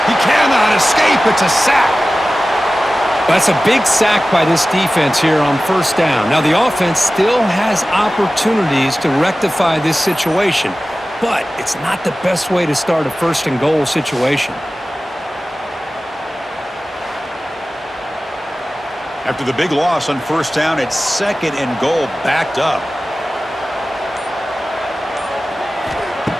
He cannot escape. It's a sack. That's a big sack by this defense here on first down. Now, the offense still has opportunities to rectify this situation, but it's not the best way to start a first and goal situation. After the big loss on first down, it's second and goal, backed up.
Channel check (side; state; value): both; normal; correlation 0.96